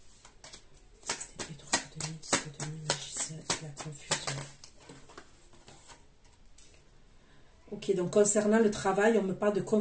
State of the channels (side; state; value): both; identical; correlation 1.00